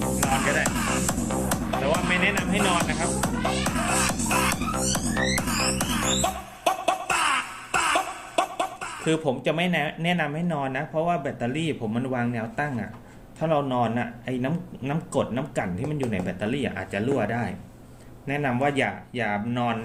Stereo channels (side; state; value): both; identical; correlation 1.00